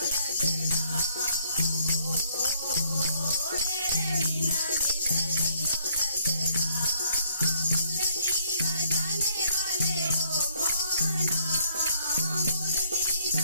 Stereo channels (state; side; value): inverted; both; correlation -0.66